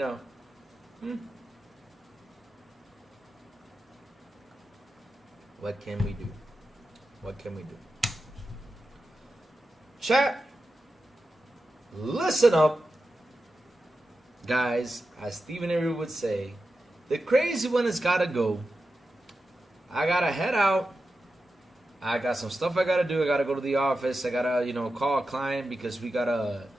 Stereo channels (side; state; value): both; normal; correlation 0.91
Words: what can we do? What can we do? Chat, listen up. Guys, as Stephen Avery would say, the crazy one has got to go. I got to head out. I got some stuff I got to do. I got to go to the office. I got to, call a client because we got to